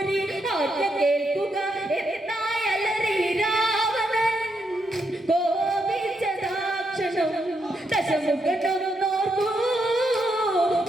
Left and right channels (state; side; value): normal; both; correlation 0.80